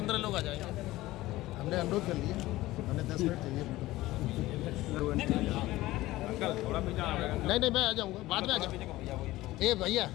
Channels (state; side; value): quieter; right; 17.4 dB